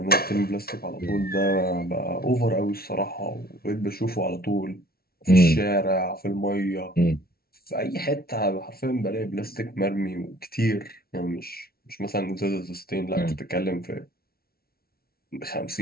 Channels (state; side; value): late; right; 0.44 ms